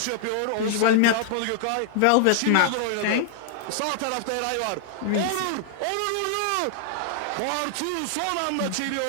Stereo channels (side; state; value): both; different; correlation -0.01